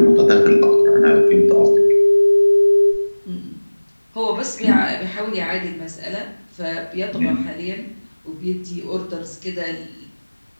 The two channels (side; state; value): both; inverted; correlation -1.00